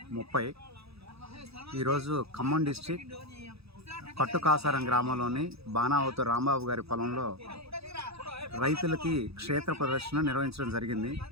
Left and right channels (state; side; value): late; left; 0.78 ms